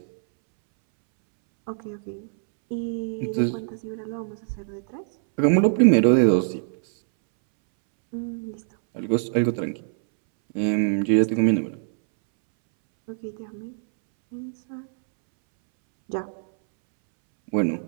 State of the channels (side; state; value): left; silent; 63 dB below the other